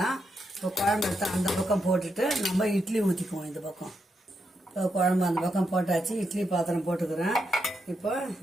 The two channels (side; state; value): both; normal; correlation 0.83